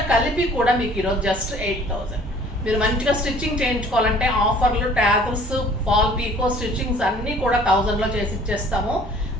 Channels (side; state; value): both; normal; correlation 0.53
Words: కలిపి కూడా మీకు ఈరోజు జస్ట్ 8,000. మీరు మంచిగా స్టిచ్చింగ్ చేయించుకోవాలంటే ఆఫర్లు, ట్యాజల్స్, ఫాల్ పీకో స్టిచ్చింగ్స్ అన్నీ కూడా 1000లో చేసి ఇచ్చేస్తాము.